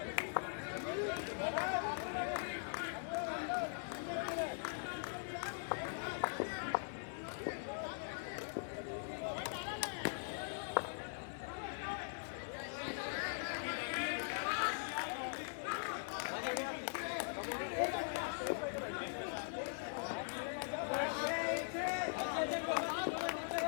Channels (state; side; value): silent; right; digital silence